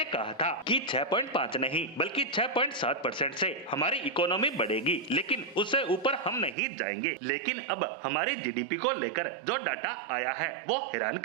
कहा था कि 6.5 नहीं बल्कि 6.7% से हमारी इकोनॉमी बढ़ेगी, लेकिन उससे ऊपर हम नहीं जाएंगे। लेकिन अब हमारी जीडीपी को लेकर जो डाटा आया है वो हैरान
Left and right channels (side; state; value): left; drops out; at 6.6 s